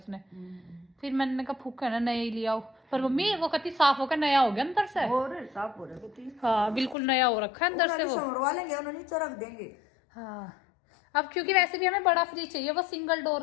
फिर मैंने कहा फूक है ना नया ही लिया हो। पर मम्मी वो कति साफ होकर नया हो गया अंदर से। और साफ हो रहा। हाँ बिल्कुल नया हो रखा है अंदर से। वो समरवा लेंगे उन्होंने, नीचे रख देंगे। हाँ अब क्योंकि वैसे भी हमें बड़ा फ्रिज चाहिए, वो सिंगल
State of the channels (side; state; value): right; drops out; at 7.0 s